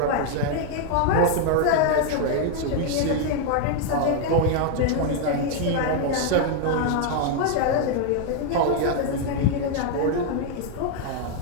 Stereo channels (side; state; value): both; different; correlation 0.00